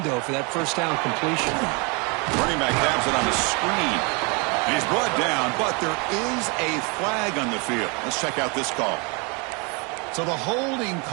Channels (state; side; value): quieter; left; 31.2 dB